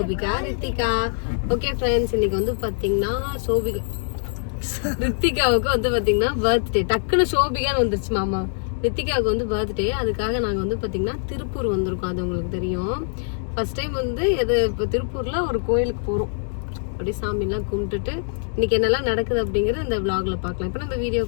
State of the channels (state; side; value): silent; right; 61 dB below the other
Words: ரித்திகா. ஓகே ஃப்ரெண்ட்ஸ், இன்னைக்கு வந்து பாத்தீங்கன்னா ரித்திகாவுக்கு வந்து பாத்தீங்கன்னா பர்த்டே. டக்குன்னு சோபிகான்னு வந்துருச்சு மாமா. ரித்திகாவுக்கு வந்து பர்த்டே. அதுக்காக நாங்க வந்து பாத்தீங்கன்னா திருப்பூர் வந்திருக்கோம். அது உங்களுக்கு தெரியும். ஃபர்ஸ்ட் டைம் வந்து இப்போ திருப்பூர்ல ஒரு கோயிலுக்கு போறோம். அப்படியே சாமி எல்லாம் கும்பிட்டுட்டு இன்னைக்கு என்னெல்லாம் நடக்குது அப்படிங்கறது இந்த vlogல பாக்கலாம். இப்ப நம்ம